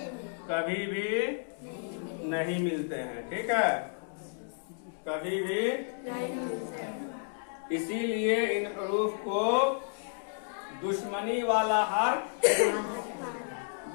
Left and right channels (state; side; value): silent; right; digital silence